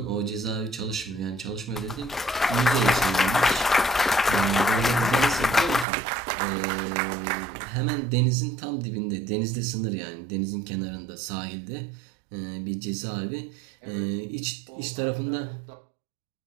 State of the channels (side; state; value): left; drops out; at 5.9 s